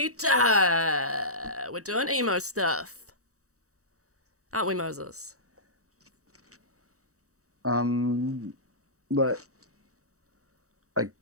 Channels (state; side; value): late; left; 0.65 ms